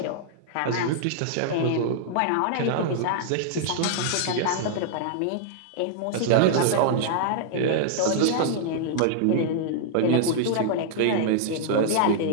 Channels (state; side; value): different; both; correlation -0.01